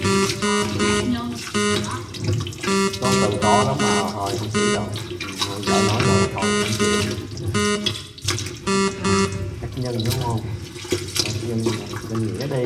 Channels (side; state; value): both; identical; correlation 1.00